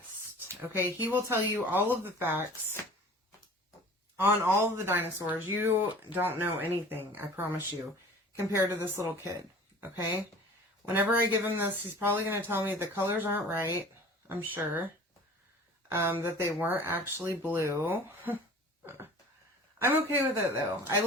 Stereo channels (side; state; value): both; normal; correlation 0.44